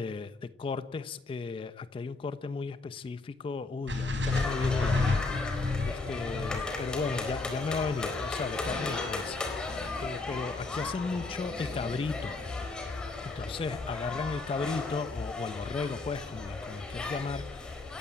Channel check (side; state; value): right; quieter; 3.5 dB